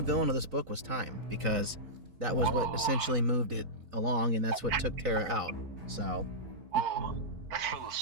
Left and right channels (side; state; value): left; late; 4.0 ms